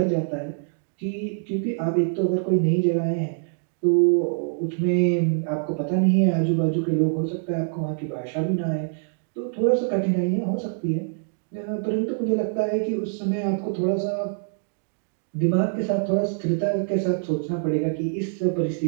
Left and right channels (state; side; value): silent; left; digital silence